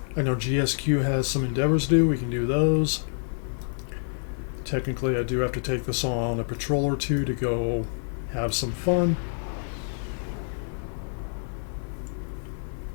I know GSQ has some endeavors to do. We can do those. Technically, I do have to take this on a patrol or two to go have some fun.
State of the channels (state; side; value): silent; right; 59 dB below the other